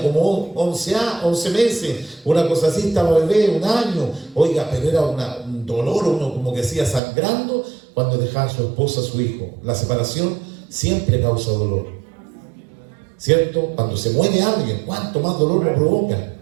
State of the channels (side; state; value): left; drops out; at 7.0 s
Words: como 11 meses, una cosa así, estaba bebé, un año. Oiga, pero era un dolor, uno como que decía sangrando cuando dejaba a su esposa, a su hijo. La separación siempre causa dolor, ¿cierto? Cuando se muere alguien, ¿cuánto más dolor lo provoca?